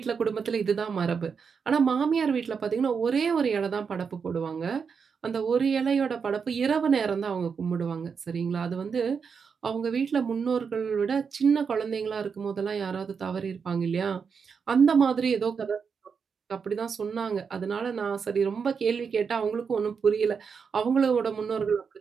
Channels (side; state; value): left; quieter; 6.0 dB